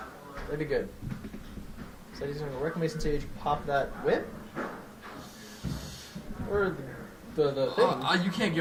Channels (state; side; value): identical; both; correlation 1.00